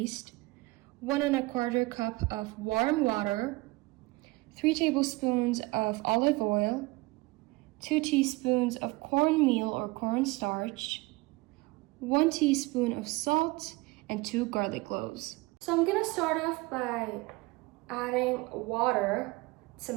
1 1/4 cup of warm water, 3 tablespoons of olive oil, 2 teaspoons of cornmeal or cornstarch, 1 teaspoon of salt, and 2 garlic cloves. So I'm gonna start off by adding water to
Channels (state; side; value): quieter; left; 22.4 dB